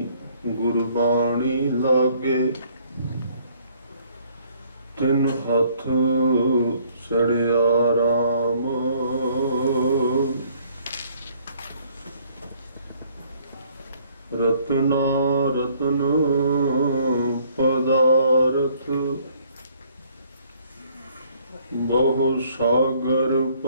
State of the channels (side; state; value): both; inverted; correlation -0.62